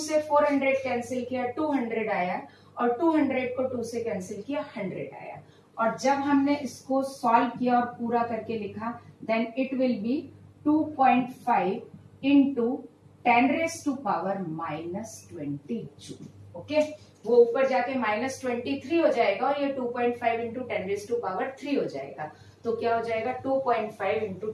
400 कैंसिल किया, 200 आया, और 200 को 2 से कैंसिल किया, 100 आया। और जब हमने इसको सॉल्व किया और पूरा करके लिखा, then it will be 2.5 into 10⁻⁻20 joule. Okay, वो ऊपर जाके -23 हो जाएगा और ये 2.5 इंटू 10⁻³ हो जाएगा। तो क्या हो जाएगा 2.5 इंटू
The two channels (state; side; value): identical; both; correlation 1.00